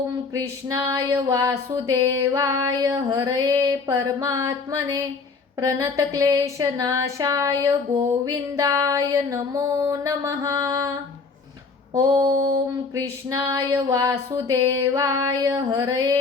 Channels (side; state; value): right; quieter; 4.5 dB